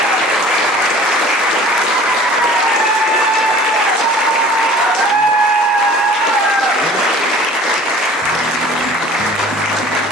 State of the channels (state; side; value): normal; both; correlation 0.46